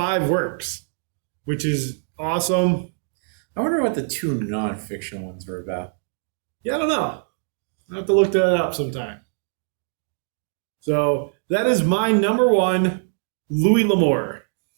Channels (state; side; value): silent; left; digital silence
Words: works, which is awesome. I wonder what the 2 nonfiction ones were about. Yeah, I don't know. I'll have to look that up sometime. So that is my number one, Louis L'Amour.